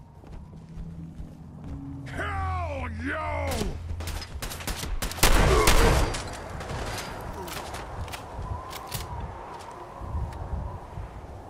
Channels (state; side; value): identical; both; correlation 1.00